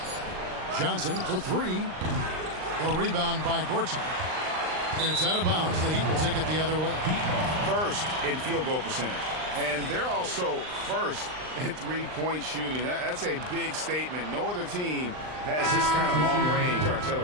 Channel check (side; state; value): left; late; 39 ms